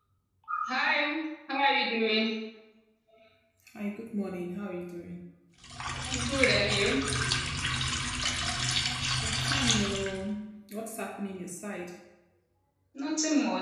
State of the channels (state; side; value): identical; both; correlation 1.00